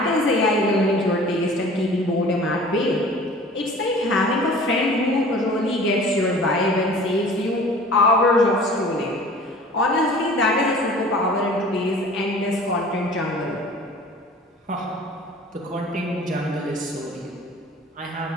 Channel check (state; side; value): normal; both; correlation 0.45